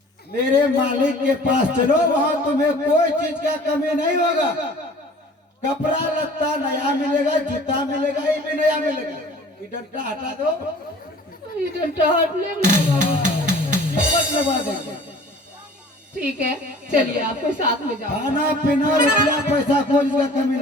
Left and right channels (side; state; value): both; normal; correlation 0.47